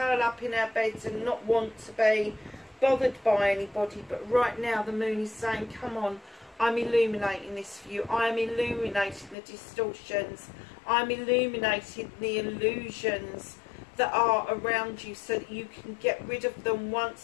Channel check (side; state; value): right; drops out; at 9.3 s